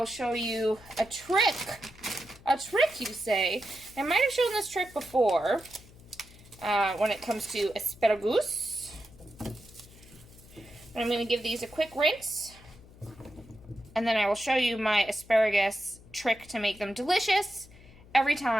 show you a trick. A trick, you say. I might have shown this trick before when it comes to asparagus. I'm going to give these a quick rinse. And then I will show you my asparagus trick to make them delicious every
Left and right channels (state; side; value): noise; left; hum, 22 dB below the sound